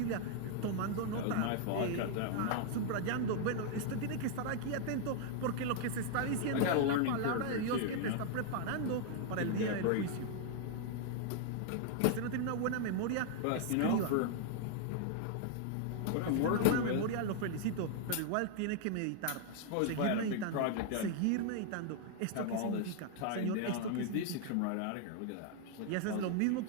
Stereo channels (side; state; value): both; different; correlation 0.00